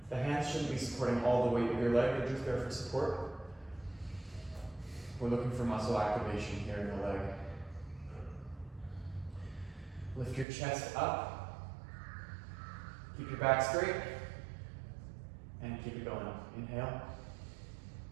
The hands shouldn't be supporting all the weight of your leg, they're just there for support. We're looking for muscle activation here in the leg. Lift your chest up. Keep your back straight. And keep it going. Inhale.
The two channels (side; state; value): left; drops out; at 10.5 s